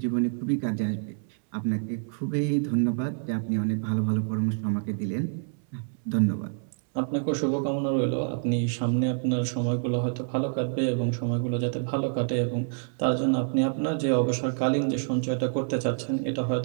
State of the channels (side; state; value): left; silent; 60 dB below the other